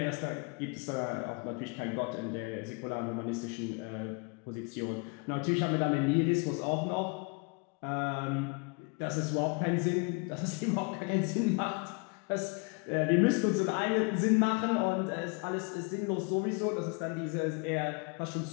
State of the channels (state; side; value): quieter; right; 32.0 dB